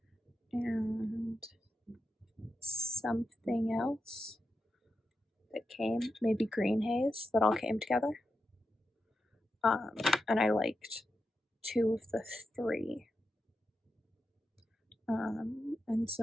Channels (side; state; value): both; normal; correlation 0.88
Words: and something else that came, maybe green haze, that all came together. And I liked 2 of the 3. And